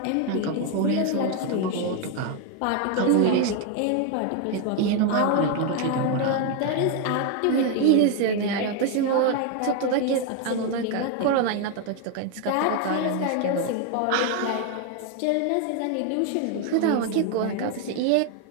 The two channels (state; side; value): different; both; correlation 0.01